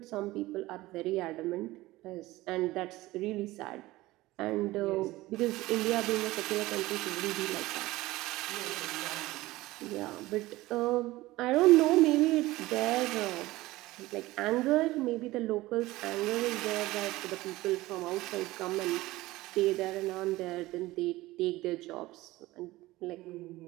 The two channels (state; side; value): quieter; left; 18.5 dB